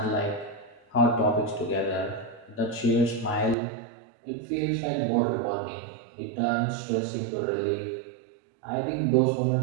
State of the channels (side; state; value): left; drops out; at 3.6 s